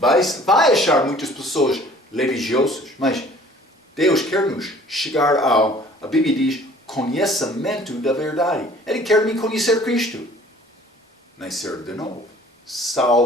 achar muitas pessoas religiosas, mas Deus quer nos chegar a Bíblia diz, conhecimento da verdade. Ele quer me conhecer Cristo. Nascer de novo.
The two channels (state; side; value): normal; both; correlation 0.52